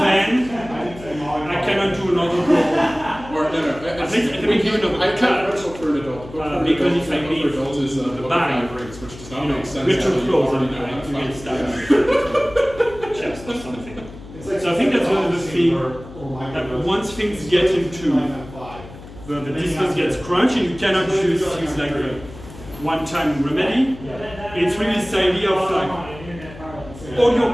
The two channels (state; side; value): noise; left; hum, 16 dB below the sound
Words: I cannot do another blow. Or no, I think I can do another I cut. can't wrestle for an adult. Book for an Because adult, if I book leave for adults is the book of bang, 5 rings, which does not You know, make sense. we're too until you close already and know how to you fight. get stabbed. Chest or something. So I think that's one of the things that once things get into the distance gets crunched and you cannot use things like a one-time remedy. It's really this idea of like all your